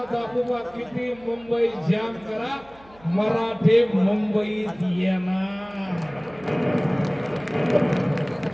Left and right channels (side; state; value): right; noise; hum, 26 dB below the sound